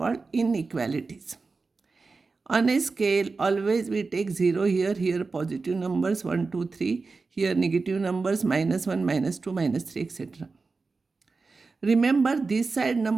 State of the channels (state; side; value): quieter; left; 4.1 dB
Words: inequalities. On a scale, always we take 0 here positive numbers 1, 2, 3, here negative numbers -1, -2, -3, etc. Remember, this side